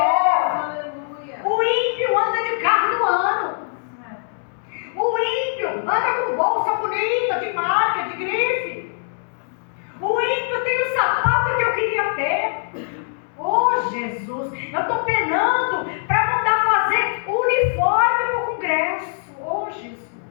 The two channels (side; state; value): right; silent; digital silence